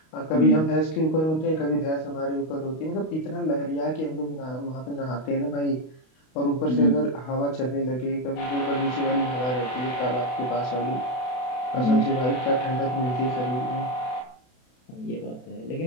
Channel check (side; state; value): right; late; 32 ms